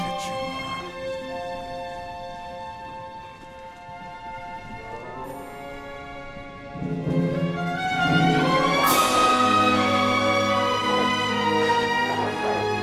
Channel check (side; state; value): both; identical; correlation 1.00